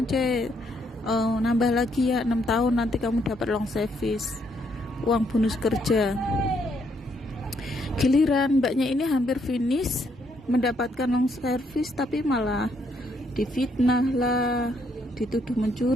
nambah lagi ya 6 tahun, nanti kamu dapat long service, uang bonus kerja. Giliran mbaknya ini hampir finish mendapatkan long service, tapi malah difitnah lah, dituduh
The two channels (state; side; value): normal; both; correlation 0.73